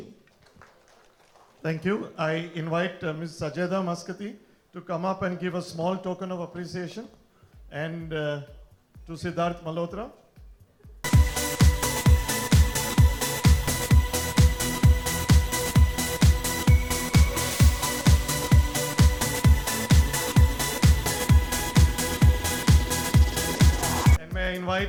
Thank you. I invite Ms. Sajeda Maskati to come up and give a small token of appreciation, and to Siddharth Malhotra. And may I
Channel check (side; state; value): both; identical; correlation 1.00